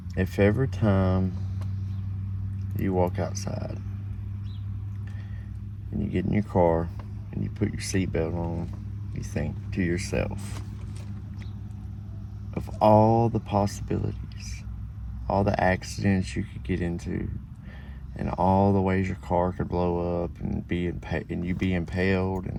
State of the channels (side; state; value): both; identical; correlation 1.00